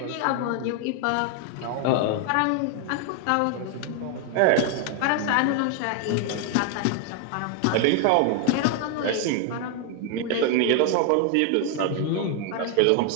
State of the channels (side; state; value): both; different; correlation 0.00